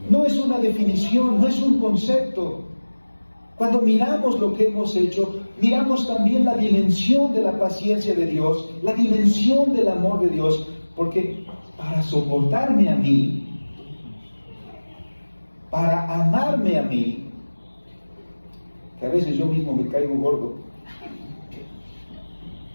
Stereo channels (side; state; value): both; inverted; correlation -1.00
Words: No es una definición, no es un concepto. Cuando miramos lo que hemos hecho, miramos también la dimensión de la paciencia de Dios, la dimensión del amor de Dios, porque para soportarme a mí, para amarme a mí, que a veces yo mismo me caigo gordo,